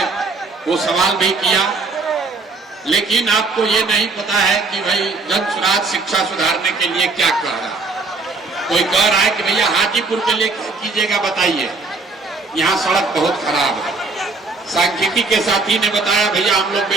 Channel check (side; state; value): left; quieter; 3.8 dB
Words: वो सवाल भी किया, लेकिन आपको ये नहीं पता है कि भाई जनसुराज शिक्षा सुधारने के लिए क्या कर रहा है। कोई कह रहा है कि भैया हाजीपुर के लिए क्या कीजिएगा बताइए, यहाँ सड़क बहुत खराब है। सांख्यिकी के साथी ने बताया भैया हम लोग